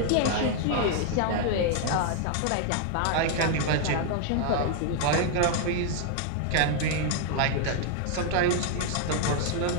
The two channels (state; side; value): different; both; correlation 0.00